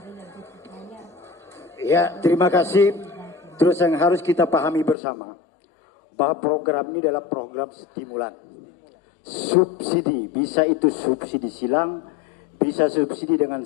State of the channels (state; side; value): drops out; right; at 5.0 s